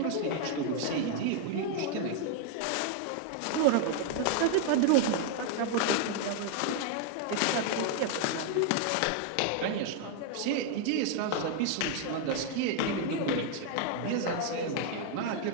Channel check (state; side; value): different; both; correlation 0.00